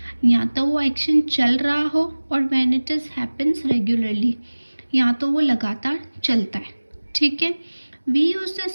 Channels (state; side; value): inverted; both; correlation -1.00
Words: या तो वो एक्शन चल रहा हो और when it is happens regularly, या तो वो लगातार चलता है। ठीक है, we use the